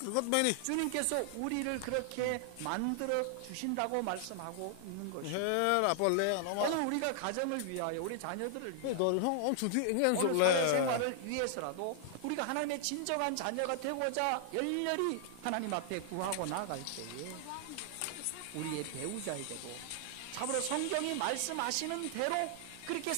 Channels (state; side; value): different; both; correlation 0.00